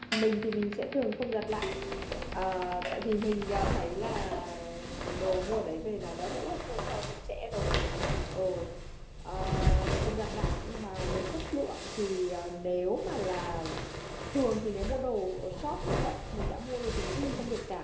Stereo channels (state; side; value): identical; both; correlation 1.00